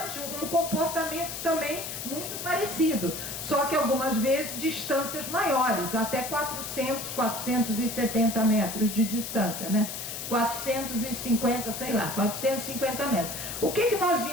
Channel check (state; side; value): noise; left; hiss, 6 dB below the sound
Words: um comportamento também muito parecido, só que algumas vezes distâncias maiores, até 400, 470 metros de distância, né? 450, sei lá, 450 metros. O que nós